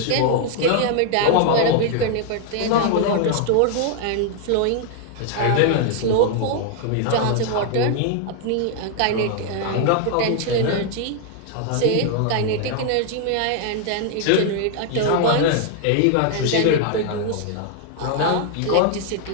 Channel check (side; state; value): both; different; correlation 0.00